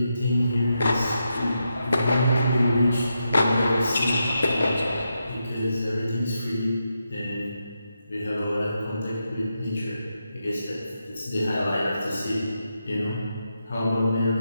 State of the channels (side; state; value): both; inverted; correlation -0.85